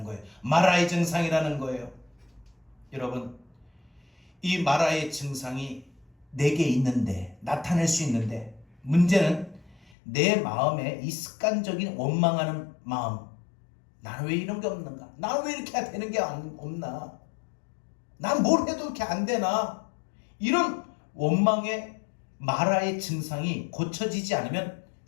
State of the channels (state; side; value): drops out; right; at 9.8 s